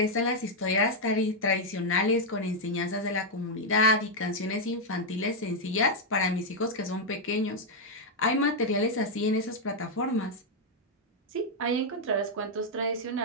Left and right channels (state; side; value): normal; both; correlation -0.01